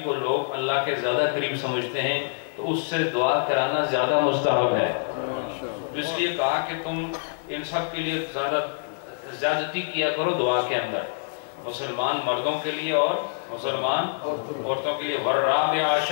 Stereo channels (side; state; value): right; silent; digital silence